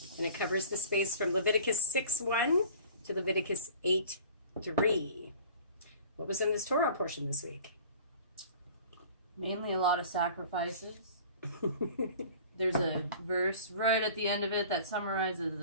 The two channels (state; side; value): inverted; both; correlation -0.46